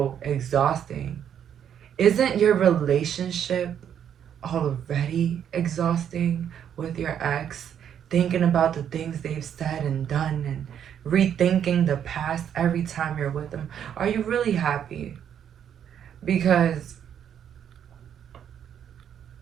exhausting. Isn't your relationship already exhausting with your ex? Thinking about the things they've said and done and rethinking the past every time you're with them. Are you really happy? Because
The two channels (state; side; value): quieter; left; 9.0 dB